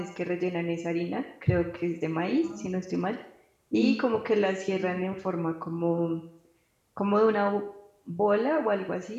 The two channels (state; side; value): identical; both; correlation 1.00